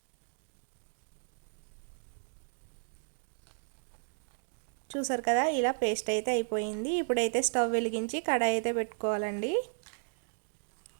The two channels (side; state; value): left; silent; digital silence